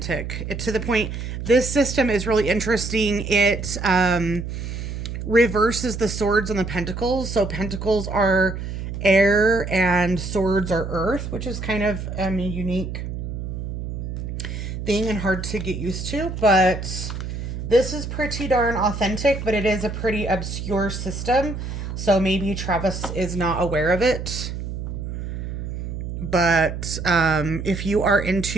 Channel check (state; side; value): noise; right; hum, 6 dB below the sound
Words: To the point, this system is really interesting. It reverses the swords and the pentacles. So pentacles are air and swords are earth, which is kind of a unique thing and hard to get used to. But this is pretty darn authentic, but it is a pretty obscure system. So maybe Travis is not aware of it. But if you are